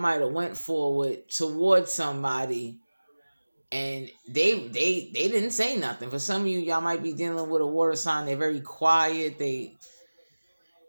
have went forward towards somebody and they didn't say nothing. For some of you, y'all might be dealing with a water sign. They're very quiet. They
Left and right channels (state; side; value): inverted; both; correlation -1.00